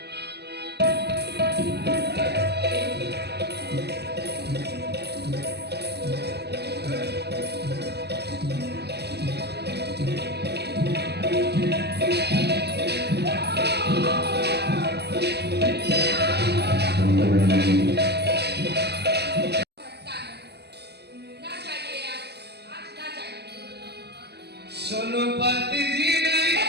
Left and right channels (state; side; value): late; left; 0.48 ms